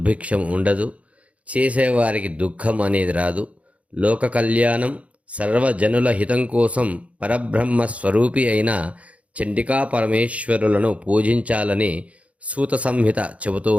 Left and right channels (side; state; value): left; late; 0.065 ms